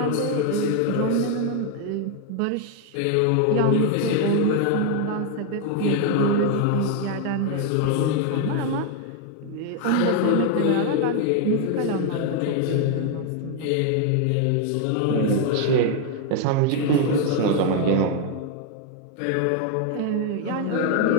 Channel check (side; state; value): both; different; correlation 0.01